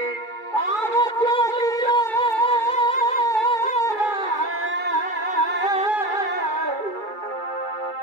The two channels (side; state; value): right; late; 2.3 ms